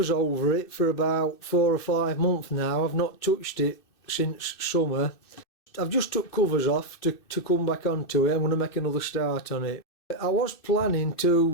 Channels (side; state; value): right; late; 2.6 ms